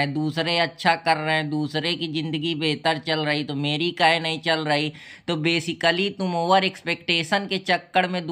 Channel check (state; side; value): identical; both; correlation 1.00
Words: दूसरे अच्छा कर रहे हैं, दूसरे की ज़िंदगी बेहतर चल रही तो मेरी काहे नहीं चल रही। तो बेसिकली तुम ओवर एक्सपेक्टेशन के चक्कर में